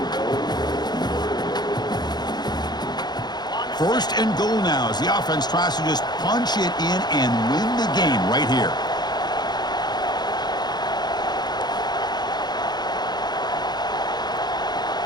First and goal now as the offense tries to just punch it in and win the game right here.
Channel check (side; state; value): right; late; 0.20 ms